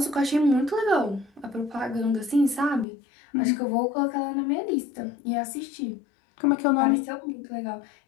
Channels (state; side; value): drops out; right; at 2.9 s